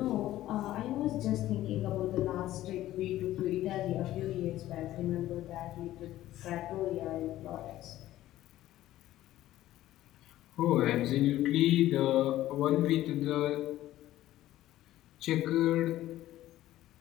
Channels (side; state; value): right; quieter; 14.4 dB